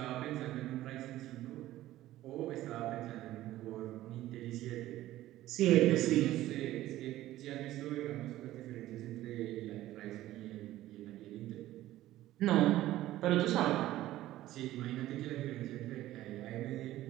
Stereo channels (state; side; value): quieter; left; 15.0 dB